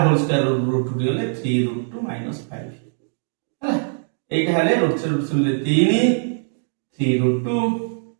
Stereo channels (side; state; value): left; silent; digital silence